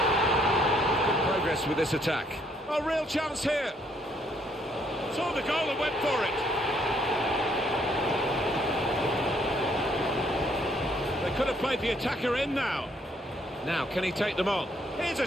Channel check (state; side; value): normal; both; correlation 0.68